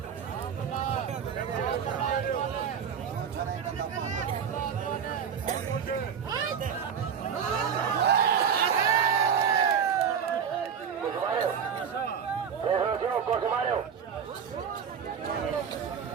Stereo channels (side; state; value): left; quieter; 7.4 dB